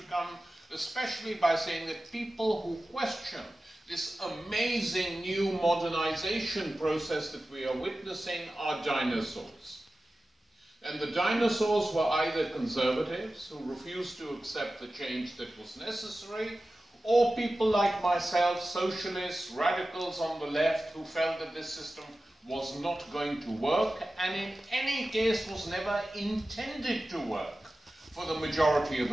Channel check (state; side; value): normal; both; correlation 0.95